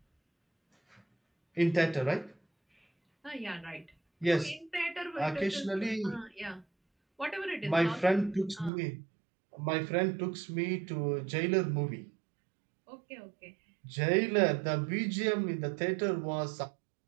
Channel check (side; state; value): left; drops out; at 8.7 s